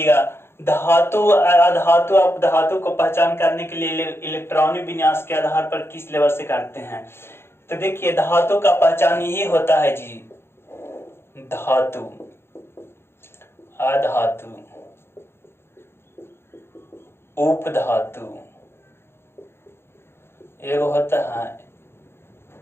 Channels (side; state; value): right; late; 0.12 ms